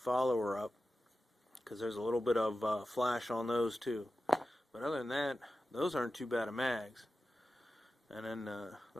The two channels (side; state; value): both; normal; correlation 0.93